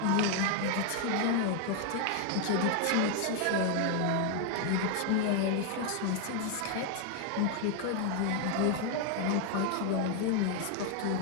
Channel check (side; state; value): both; different; correlation 0.01